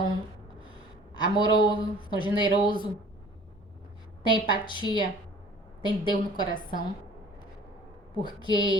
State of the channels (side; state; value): both; normal; correlation 0.48